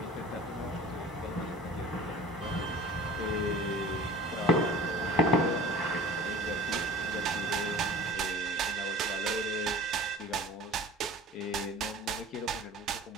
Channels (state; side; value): normal; both; correlation 0.40